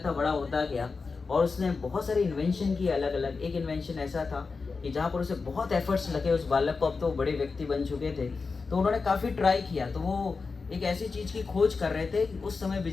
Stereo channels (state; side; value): quieter; right; 4.5 dB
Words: था बड़ा होता गया और उसने बहुत सारे इन्वेंशन किए अलग अलग। एक इन्वेंशन ऐसा था कि जहाँ पर उसे बहुत एफर्ट्स लगे उस बालक को, अब तो वो बड़े व्यक्ति बन चुके थे, तो उन्होंने काफ़ी ट्राई किया। तो वो एक ऐसी चीज़ की खोज कर रहे थे कि उस समय